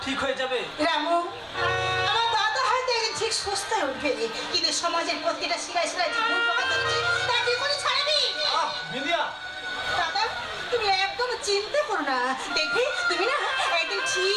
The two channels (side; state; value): both; identical; correlation 1.00